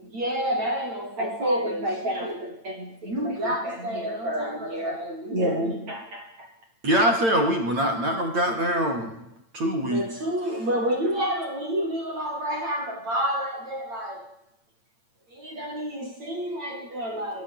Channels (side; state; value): left; late; 8.8 ms